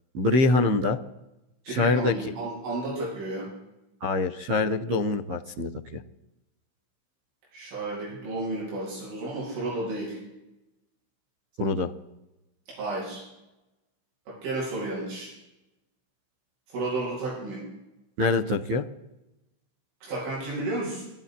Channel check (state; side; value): late; left; 16 ms